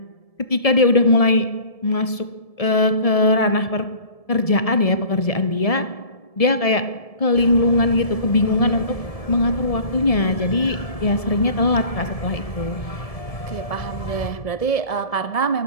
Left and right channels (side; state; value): right; late; 1.7 ms